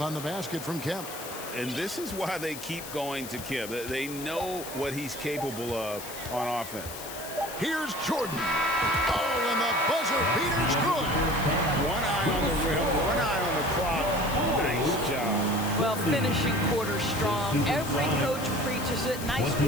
on the basket from Kemp. And this is why they keep going to Kemp. They know what he's capable of on offense. Here's Jordan. Oh, and the buzzer beater's good. One eye on the rim, one eye on the clock. Nice job. Well, finishing quarter strong. Every coach preaches it. Nice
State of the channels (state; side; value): noise; left; hiss, 11 dB below the sound